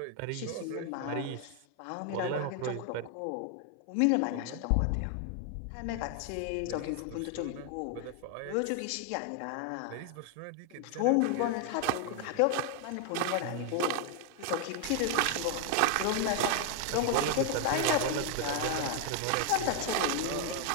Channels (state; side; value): different; both; correlation 0.00